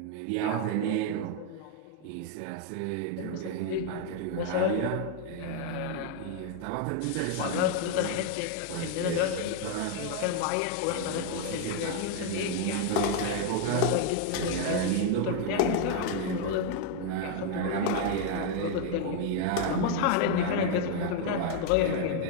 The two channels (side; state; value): both; different; correlation 0.00